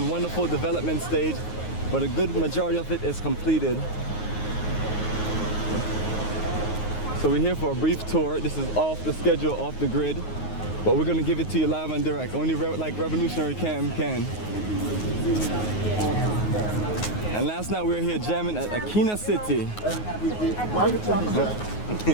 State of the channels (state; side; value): late; right; 9.5 ms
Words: wonderful development stage, but a good majority of it is completed. So we're here for a brief tour. This is off the schedule, off the grid, but we're gonna give it to you live and direct. Only like Revolutionary Cam can. And last night we were here jamming at Akina City.